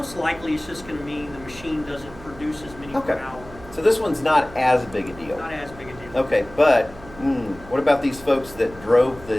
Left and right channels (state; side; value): noise; right; hum, 18 dB below the sound